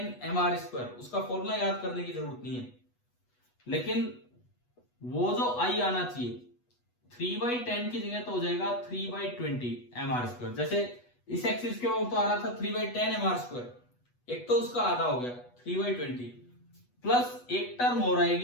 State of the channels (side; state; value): right; late; 8.2 ms